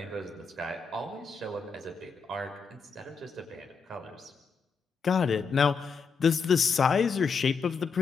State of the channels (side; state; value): right; quieter; 5.4 dB